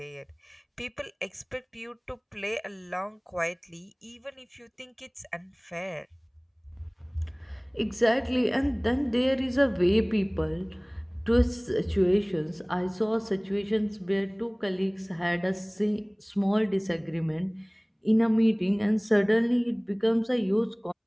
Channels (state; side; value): identical; both; correlation 1.00